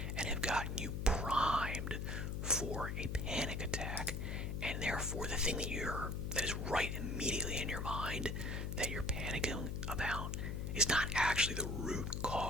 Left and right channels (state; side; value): noise; left; hum, 2 dB below the sound